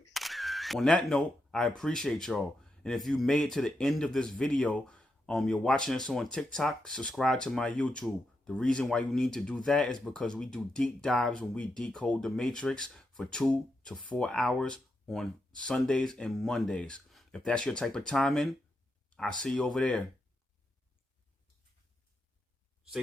On that note, I appreciate y'all. And if you made it to the end of this video, you're watching us on TikTok, subscribe to my YouTube. The reason why you need to do that is because we do deep dives when we decode the Matrix for 2 to 4 hours on Sundays and Mondays. If that's your type of timing, I'll see you over there.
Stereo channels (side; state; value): both; normal; correlation 0.84